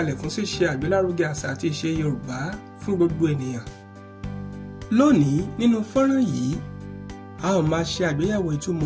fún ṣíṣe àgbélárugẹ àṣà àti ìṣe Yorùbá fún gbogbo ènìyàn. Lónìí nínú fọ́nrán yìí, a ó máa ṣe àgbéyẹ̀wò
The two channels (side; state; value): both; identical; correlation 1.00